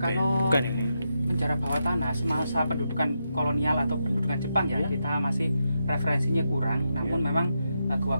Kalau Bukan ini. penjara bawah tanah semasa pendudukan kolonial atau pendudukan Jepang ya, kita masih referensinya kurang. Namun memang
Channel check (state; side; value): inverted; both; correlation -0.85